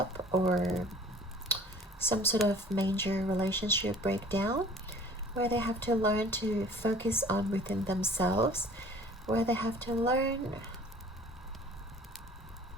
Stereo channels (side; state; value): both; normal; correlation 0.49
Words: or some sort of major relationship breakdown, where they have to learn to focus on within themselves, where they have to learn